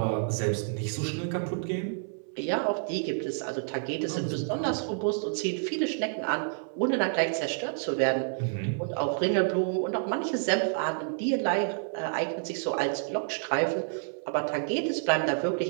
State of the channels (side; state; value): left; silent; 58 dB below the other